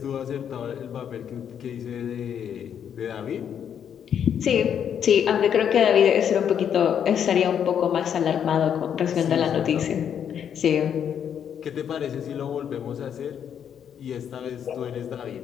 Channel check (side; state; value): right; quieter; 8.6 dB